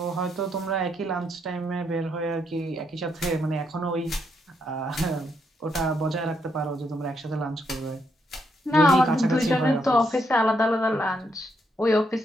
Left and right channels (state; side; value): normal; both; correlation 0.77